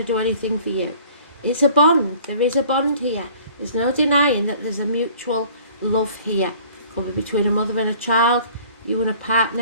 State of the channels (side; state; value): both; inverted; correlation -0.51